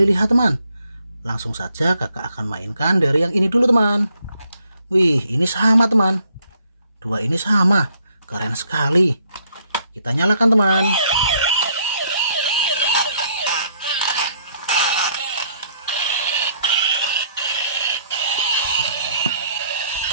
lihat teman. Langsung saja kakak akan mainkan dari yang ini dulu teman. Wih, ini sama teman. Dua ini sama, keren sekali. Kita nyalakan teman.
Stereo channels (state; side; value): inverted; both; correlation -0.68